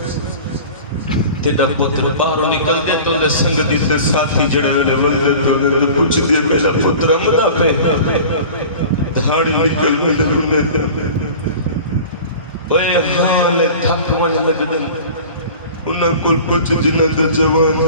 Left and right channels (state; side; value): inverted; both; correlation -0.40